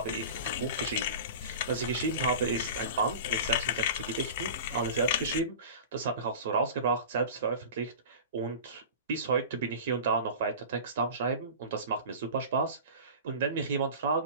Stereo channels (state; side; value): inverted; both; correlation -0.34